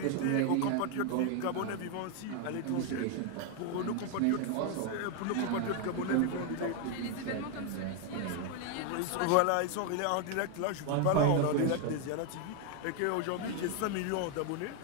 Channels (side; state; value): both; different; correlation 0.01